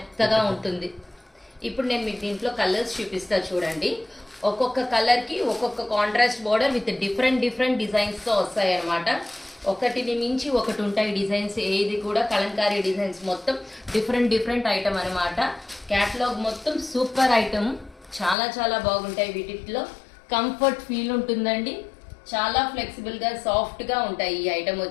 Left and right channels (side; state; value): right; drops out; at 18.4 s